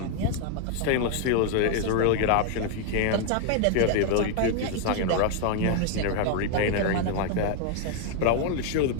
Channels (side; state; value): both; different; correlation 0.00